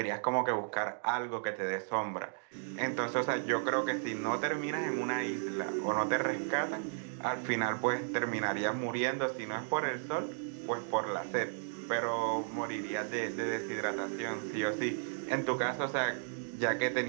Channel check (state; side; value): silent; left; digital silence